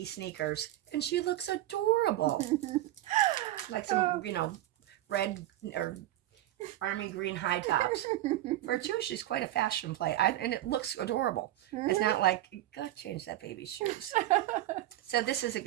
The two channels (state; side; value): quieter; left; 14.5 dB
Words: sneakers, and she looks adorable. Like some, red or army green high tops. For a two, she's quite a fashion play, and it looks adorable. It's not like, go change that baby's shoes. So this is